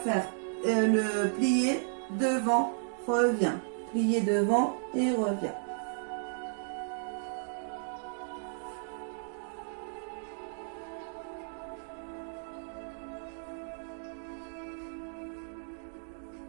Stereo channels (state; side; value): silent; left; digital silence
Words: le plié devant, revient, plié devant et revient.